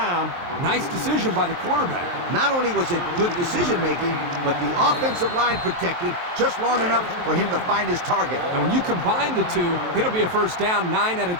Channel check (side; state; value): left; late; 23 ms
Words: Nice decision by the quarterback. Not only was it good decision-making, but the offensive line protected just long enough for him to find his target. And when you combine the two, it'll be a first down 9 out of